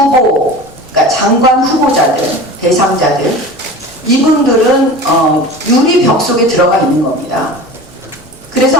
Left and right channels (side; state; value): left; noise; rumble, 29 dB below the sound